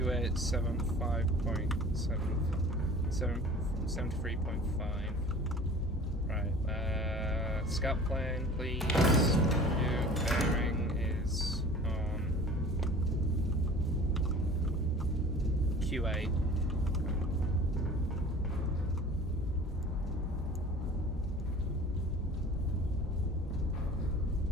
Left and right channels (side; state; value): both; normal; correlation 0.43